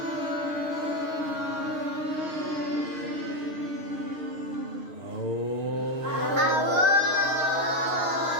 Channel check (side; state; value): left; late; 6.4 ms